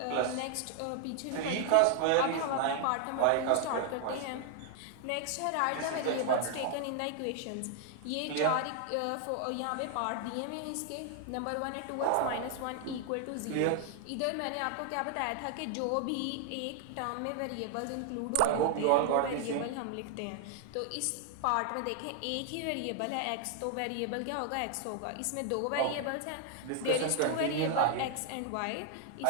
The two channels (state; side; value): different; both; correlation 0.00